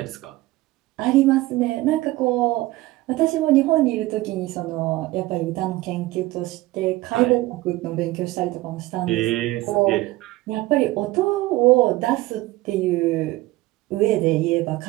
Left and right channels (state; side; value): quieter; left; 18.5 dB